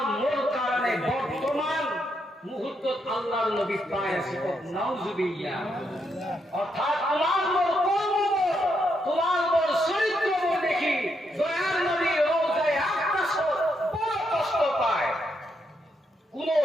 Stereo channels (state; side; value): normal; both; correlation 0.79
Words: মোর কারণে বর্তমান মুহূর্ত আল্লাহর নবী পায় আছে নাউজুবিল্লাহ অর্থাৎ তোমার মোর কর্ম তোমার মোর চরিত্র দেখি দয়ার নবী রওজায় আকাশ বড় কষ্ট পায় কোন